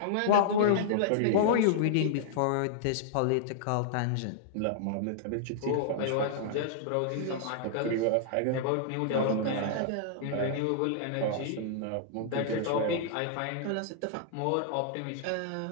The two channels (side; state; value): both; different; correlation -0.01